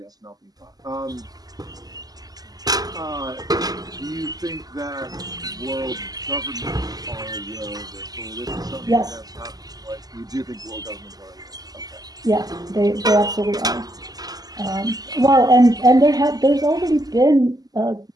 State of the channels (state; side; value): late; left; 0.18 ms